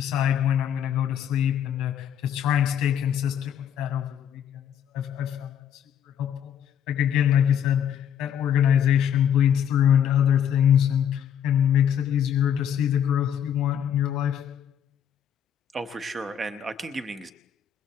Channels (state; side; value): quieter; right; 9.1 dB